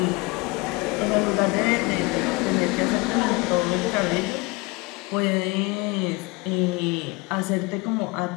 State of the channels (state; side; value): quieter; right; 25.3 dB